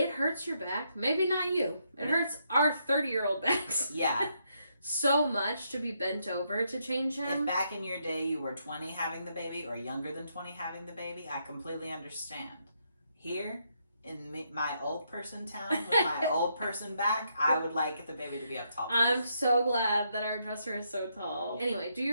hurts your back. Maybe not you. It hurts our 30-year-old backs. Yeah. So much to be bent over to change him. If back in your day you were 20 having the baby or younger than 20 having the baby, I completely understand. Here, in my old person town with my old person back, I would like the baby to be up tall. I'm so glad that our dresser is so tall. Anyway, do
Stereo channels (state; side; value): inverted; both; correlation -0.77